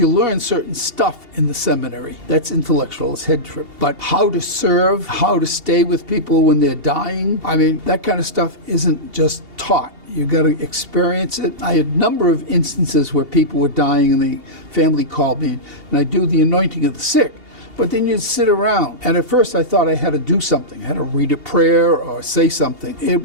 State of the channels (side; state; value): left; late; 2.8 ms